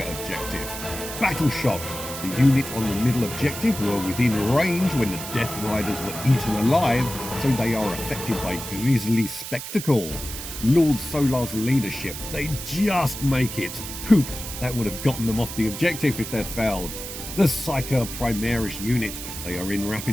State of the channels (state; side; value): noise; right; hiss, 9 dB below the sound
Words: objective. Battle Shock. The unit on the middle objective were within range when the Death Riders were eaten alive, so they are affected by Grisly Spectacle. Lord Solar's leadership, they just make it. Poop, that would have gotten them off the objective if they'd failed. The Psyker Primaris unit, they are in